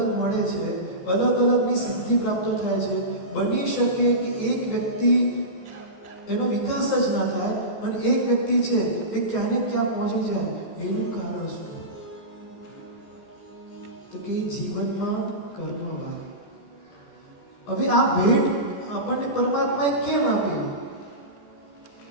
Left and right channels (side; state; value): right; late; 14 ms